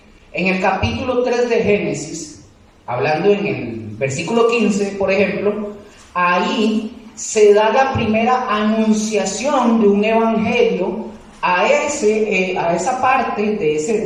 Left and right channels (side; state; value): both; identical; correlation 1.00